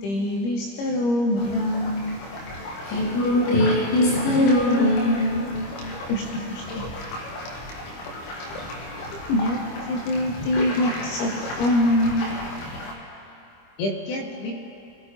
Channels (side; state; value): right; late; 25 ms